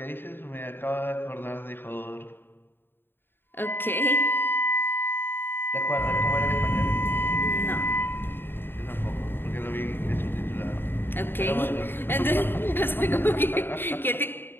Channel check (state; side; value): late; right; 0.10 ms